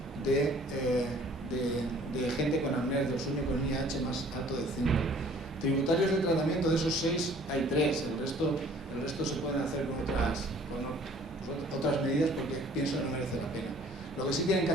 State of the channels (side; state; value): both; normal; correlation 0.54